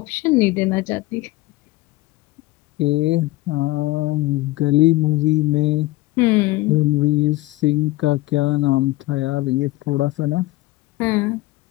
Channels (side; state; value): right; quieter; 18.9 dB